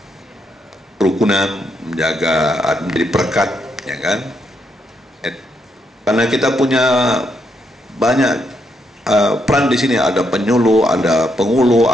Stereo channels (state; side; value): normal; both; correlation 0.78